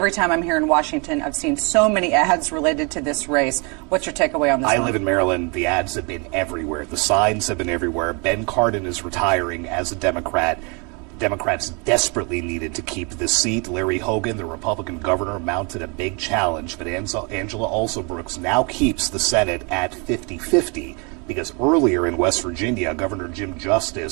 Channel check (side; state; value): left; quieter; 32.4 dB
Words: time I'm here in Washington, I've seen so many ads related to this race. What's your takeaway on this I one? live in Maryland. The ads have been everywhere. The signs have been everywhere. Ben Cardin is retiring as a Democrat. Democrats desperately needed to keep this seat. Larry Hogan, the Republican governor, mounted a big challenge, but Angela Alsobrooks now keeps the Senate at 50-50 because earlier in West Virginia, Governor Jim